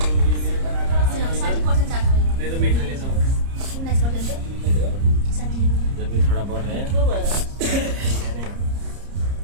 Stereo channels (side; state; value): left; late; 30 ms